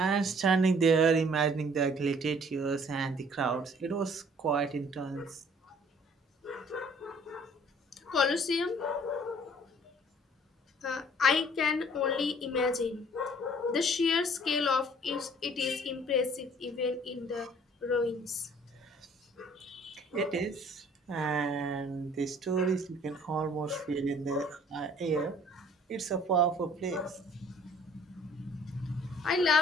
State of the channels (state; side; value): normal; both; correlation 0.56